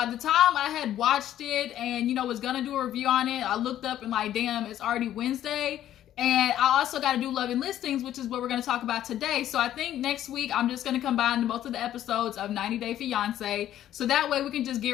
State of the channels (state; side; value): quieter; right; 12.0 dB